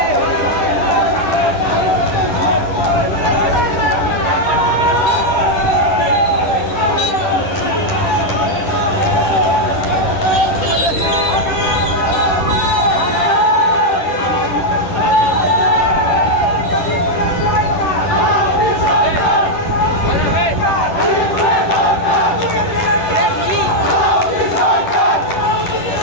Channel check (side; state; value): right; late; 10 ms